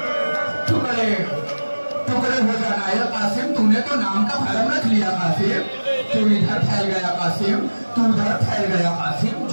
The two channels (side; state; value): both; inverted; correlation -1.00